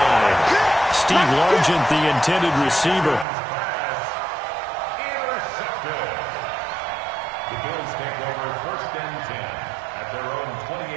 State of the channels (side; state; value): left; drops out; at 3.2 s